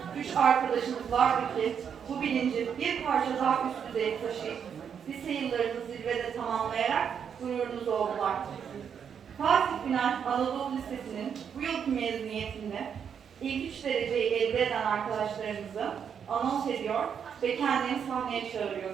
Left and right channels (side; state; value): left; quieter; 7.6 dB